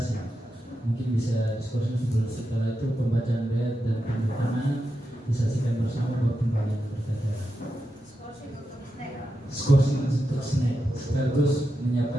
mungkin bisa diskusi sebelum setelah itu pembacaan ayat dan penandatanganan disaksikan bersama buat pembacaan berita. Skorsing untuk snack sekaligus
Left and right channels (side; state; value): both; normal; correlation 0.88